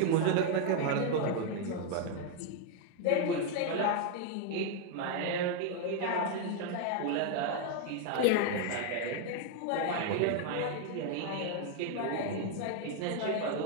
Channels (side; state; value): both; different; correlation 0.01